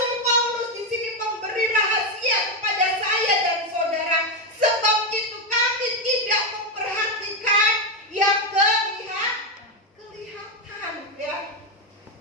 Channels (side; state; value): both; normal; correlation 0.07